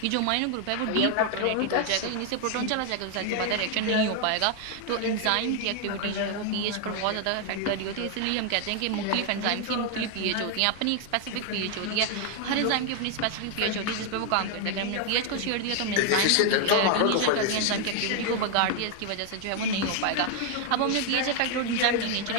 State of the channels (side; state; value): both; different; correlation 0.00